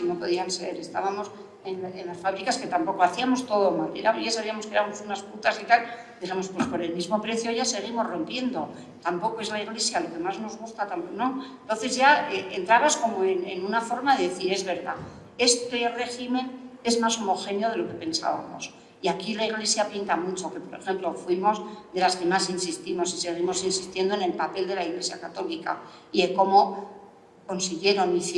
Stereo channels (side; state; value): both; identical; correlation 1.00